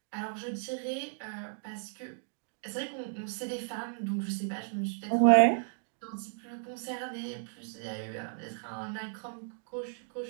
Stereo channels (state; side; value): silent; left; digital silence